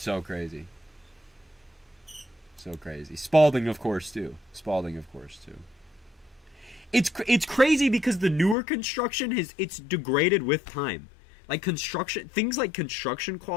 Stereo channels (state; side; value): drops out; right; at 8.6 s